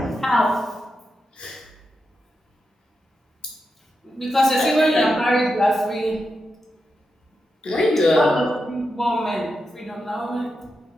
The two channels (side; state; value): both; normal; correlation 0.87